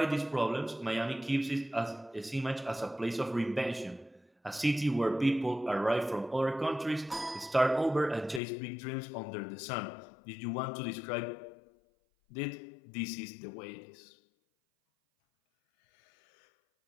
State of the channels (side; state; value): right; drops out; at 8.4 s